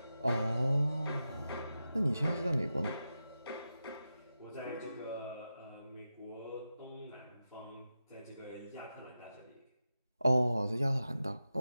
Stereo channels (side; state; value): both; inverted; correlation -0.91